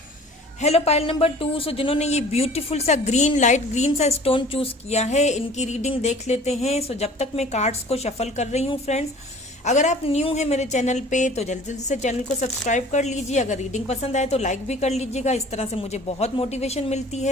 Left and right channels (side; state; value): both; normal; correlation 0.47